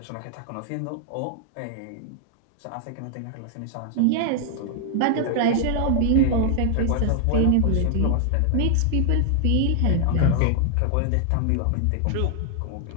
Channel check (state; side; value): different; both; correlation 0.00